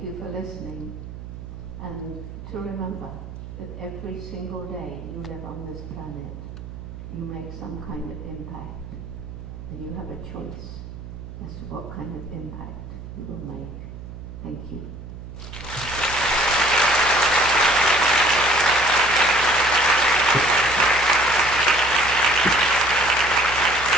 you for listening, and to remember that every single day you live on this planet, you make some kind of impact, and you have a choice as to what kind of impact you will make. Thank you.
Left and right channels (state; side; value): noise; right; hum, 12 dB below the sound